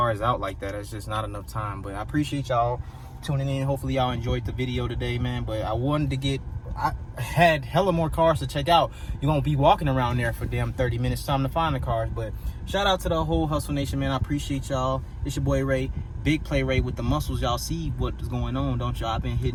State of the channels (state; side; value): identical; both; correlation 1.00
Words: out like that. It's just not enough time. But I appreciate y'all tuning in. Hopefully y'all enjoyed the video today, man. But I had hella more cars to check out. You won't be walking around there for damn 30 minutes. Time to find the cars. But shout out to the whole Hustle Nation, man. I appreciate y'all. It's your boy Ray. Big Play Ray with the muscles. Y'all see what is going on, don't y'all? I've been